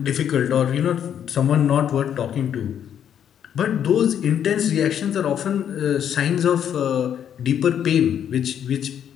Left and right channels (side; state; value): right; quieter; 9.2 dB